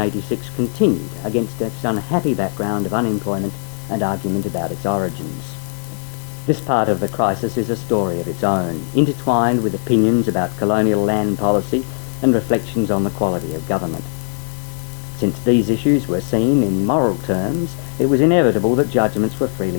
continued against its unhappy background of unemployment and argument about its origins. This part of the crisis is a story of its own, intertwined with opinions about colonial land policy and reflections on the quality of government. Since these issues were seen in moral terms, it was inevitable that judgments were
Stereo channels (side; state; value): right; silent; 66 dB below the other